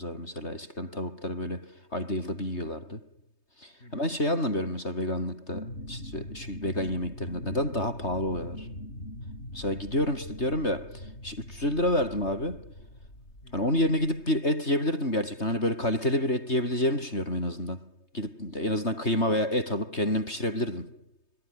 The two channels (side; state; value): right; late; 3.2 ms